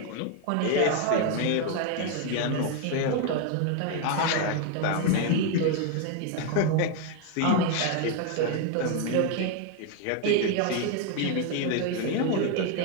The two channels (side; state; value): both; different; correlation 0.01